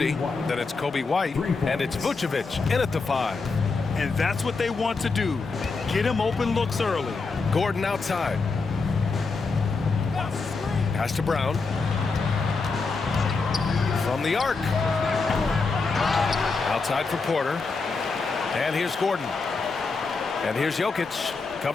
Then it's Kobe White, and it's Vucevic in at the 5. And that's what they want to do. Get him open looks early. Gordon outside. Pass to Brown. From the arc. Outside for Porter. And here's Gordon. And here's Jokic,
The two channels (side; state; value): right; quieter; 4.3 dB